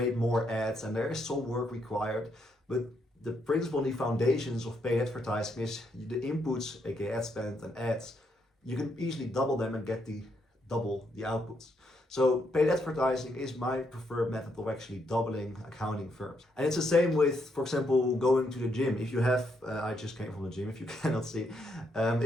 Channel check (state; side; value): normal; both; correlation 0.76